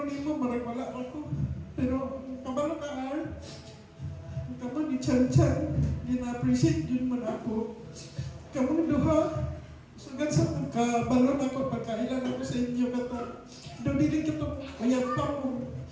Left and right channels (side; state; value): both; identical; correlation 1.00